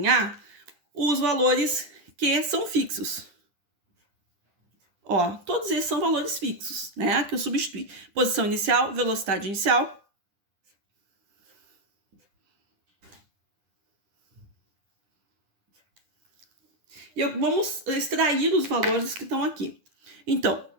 os valores que são fixos. Ó, todos esses são valores fixos, né? Que eu substituí. Posição inicial, velocidade inicial. E vamos extrair os valores que estão aqui. Então,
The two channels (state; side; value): late; left; 10 ms